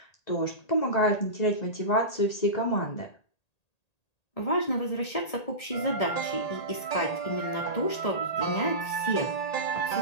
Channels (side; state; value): right; late; 1.8 ms